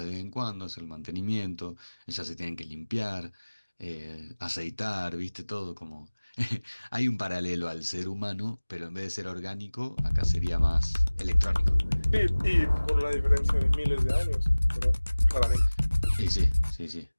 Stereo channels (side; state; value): both; inverted; correlation -1.00